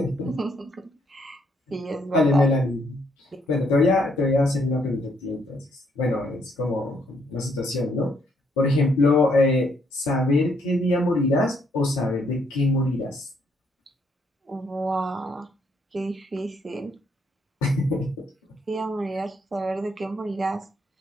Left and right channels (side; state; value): both; normal; correlation 0.72